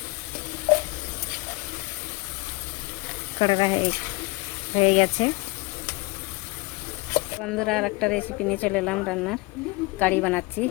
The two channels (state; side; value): quieter; right; 25.1 dB